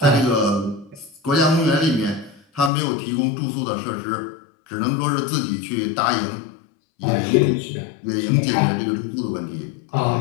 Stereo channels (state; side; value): drops out; right; at 2.7 s